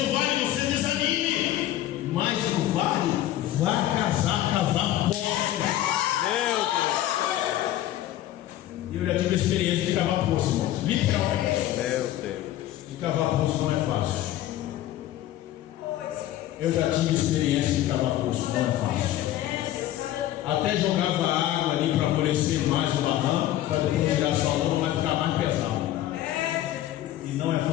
no vale você desanime, mas no vale vai cavar poços. Meu Deus. E eu já tive a experiência de cavar poços, irmãos. Literalmente. Meu Deus. De cavar poços não é fácil. Eu já tive experiência de cavar poços, não é fácil. Até jogava água ali para amolecer mais o barranco, para depois tirar só a lama, vai ficar mais pesado. E não é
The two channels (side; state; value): right; quieter; 13.5 dB